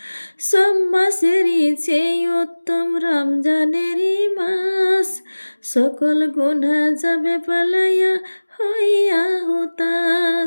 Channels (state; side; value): inverted; both; correlation -1.00